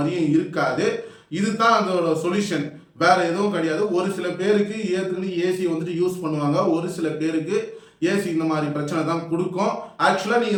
இருக்காது. இதுதான் அதோட சொல்யூஷன், வேற எதுவும் கிடையாது. ஒரு சில பேருக்கு ஏற்றுக்கிட்டு ஏசி வந்துட்டு யூஸ் பண்ணுவாங்க, ஒரு சில பேருக்கு ஏசி இந்த மாதிரி பிரச்சனை தான் கொடுக்கும். ஆக்சுவலாக நீங்கள்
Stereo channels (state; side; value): identical; both; correlation 1.00